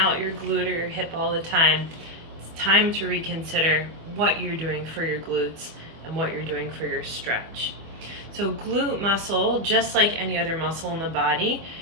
your glute or your hip all the time, it's time to reconsider what you're doing for your glutes and what you're doing for your stretch. So glute muscle, just like any other muscle in the body,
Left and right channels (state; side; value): late; left; 25 ms